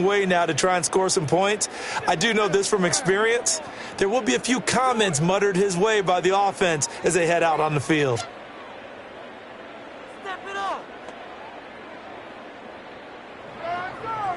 way now to try and score some points. I do know this from experience. There will be a few comments muttered his way by the offense as they head out on the field.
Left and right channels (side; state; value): both; identical; correlation 1.00